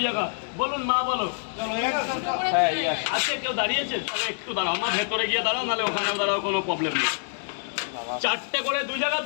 জায়গা বলুন, মা বলো। হ্যাঁ এই আসে। আছে কেউ দাঁড়িয়েছে? তাহলে একটু দাঁড়াও, মা ভেতরে গিয়ে দাঁড়াও, নাহলে ওখানেও দাঁড়াও, কোনো প্রবলেম নেই। 4টে করে 2 জায়গা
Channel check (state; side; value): silent; right; digital silence